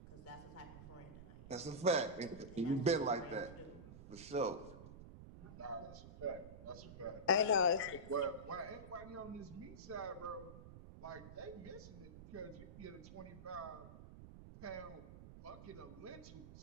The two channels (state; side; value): noise; right; rumble, 14 dB below the sound